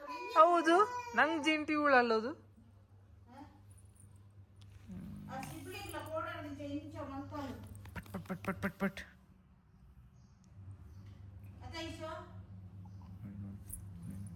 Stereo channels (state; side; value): identical; both; correlation 1.00